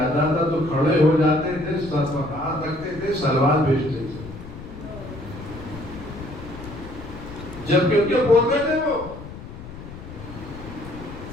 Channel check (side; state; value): left; noise; rumble, 13 dB below the sound